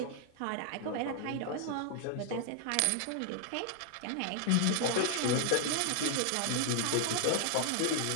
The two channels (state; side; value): different; both; correlation 0.00